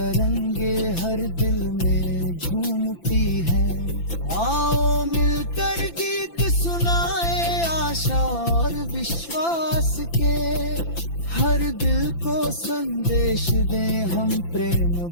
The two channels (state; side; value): late; right; 5.9 ms